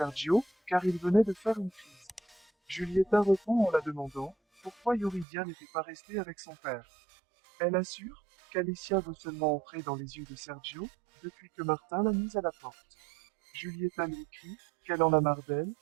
car il venait de faire une crise. Julieta répond en la demandant, pourquoi Yuridia n'était pas restée avec son père. Elle assure qu'Alicia veut seulement entrer dans les yeux de Sergio, depuis que Martin l'a mise à la porte. Julieta lui écrit qu'elle en a marre d'elle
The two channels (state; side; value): drops out; left; at 5.2 s